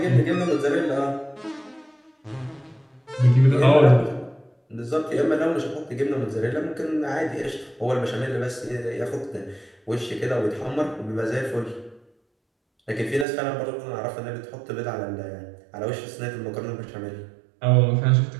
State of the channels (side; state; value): left; drops out; at 13.2 s